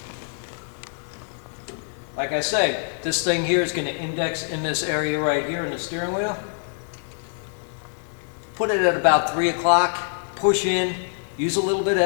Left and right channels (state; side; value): silent; right; digital silence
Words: Like I say, this thing here is going to index in this area right here in the steering wheel. Put it at about 3 o'clock, push in, use a little bit of